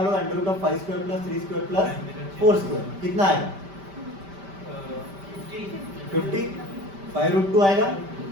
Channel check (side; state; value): left; late; 5.1 ms